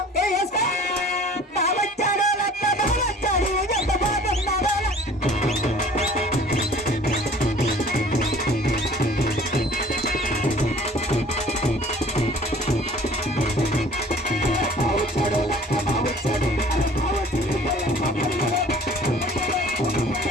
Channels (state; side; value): normal; both; correlation 0.49